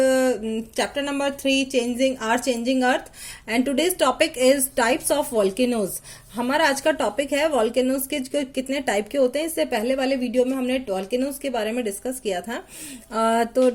chapter number 3 changing earth and today's topic is types of volcanoes. हमारा आज का topic है volcanoes के कितने type के होते हैं। इससे पहले वाले वीडियो में हमने वॉल्केनोज के बारे में डिस्कस किया था। तो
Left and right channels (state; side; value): identical; both; correlation 1.00